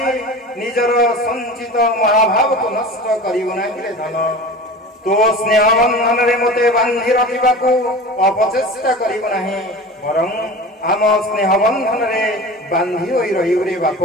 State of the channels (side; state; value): both; normal; correlation 0.34